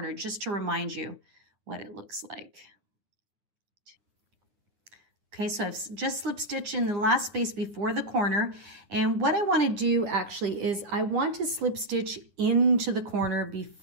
just to remind you what it looks like. Okay, so I've just slip stitched in the last space before the corner. And what I want to do actually is I want to slip stitch into the corner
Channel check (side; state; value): left; late; 9.6 ms